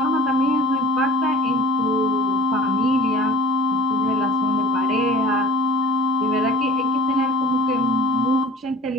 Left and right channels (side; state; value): both; normal; correlation 0.43